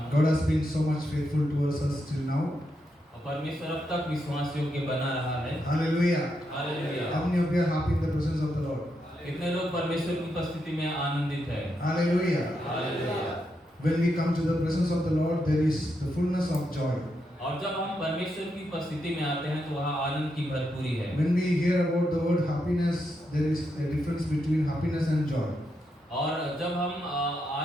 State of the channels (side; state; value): both; normal; correlation 0.82